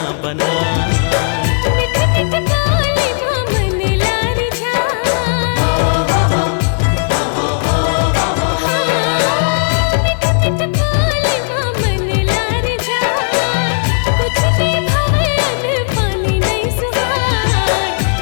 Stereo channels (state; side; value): silent; right; digital silence